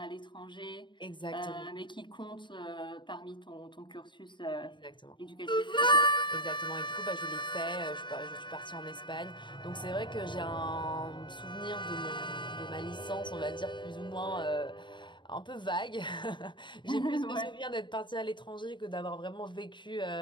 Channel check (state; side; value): late; right; 0.23 ms